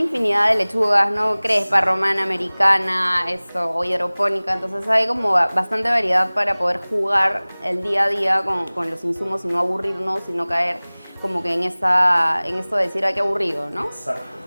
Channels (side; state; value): both; inverted; correlation -1.00